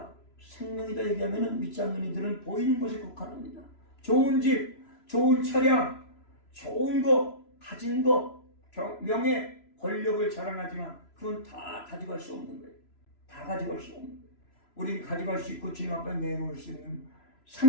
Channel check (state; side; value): late; right; 3.0 ms